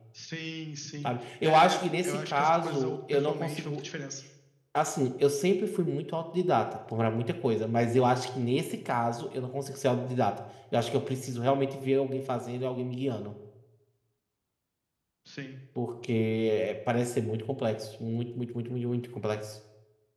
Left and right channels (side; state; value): both; identical; correlation 1.00